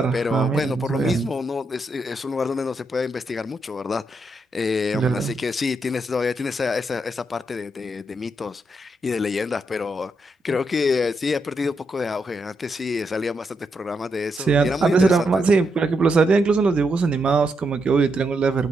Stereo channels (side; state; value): both; normal; correlation 0.81